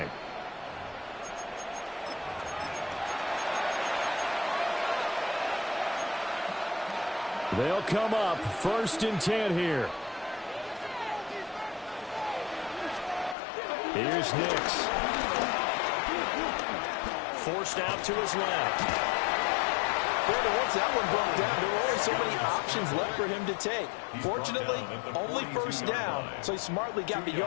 They'll come up 1st and 10 here. Here's Nix. Forced out to his left. Once that one broke down, there were only so many options left for him to take. Fortunately, only first down, so he smartly got the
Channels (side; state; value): right; drops out; at 13.4 s